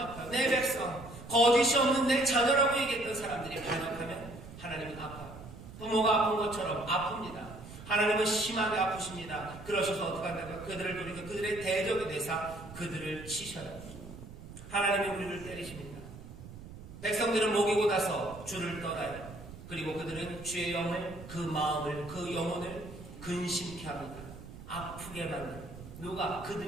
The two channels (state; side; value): noise; right; rumble, 14 dB below the sound